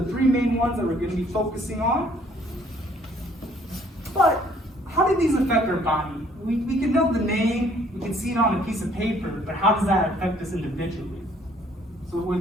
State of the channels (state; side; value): normal; both; correlation 0.61